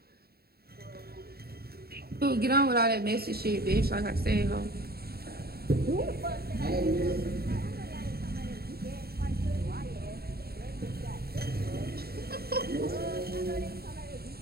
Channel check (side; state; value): left; late; 0.45 ms